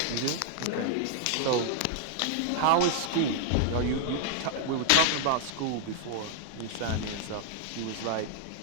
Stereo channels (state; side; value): different; both; correlation 0.00